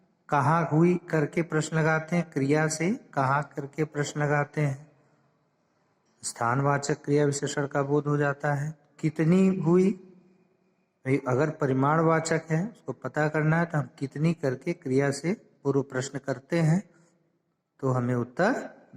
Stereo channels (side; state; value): both; identical; correlation 1.00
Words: कहाँ हुई करके प्रश्न लगाते हैं, क्रिया से कहाँ करके प्रश्न लगाते हैं। स्थानवाचक क्रिया विशेषण का बोध हो जाता है। कितनी हुई, अगर परिमाणवाचक है उसको पता करना है तो हम कितनी करके क्रिया से पूर्व प्रश्न करते हैं तो हमें उत्तर